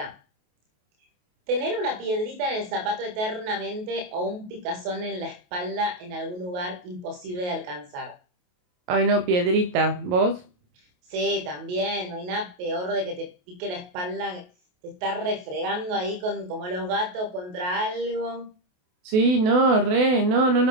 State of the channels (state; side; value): late; left; 28 ms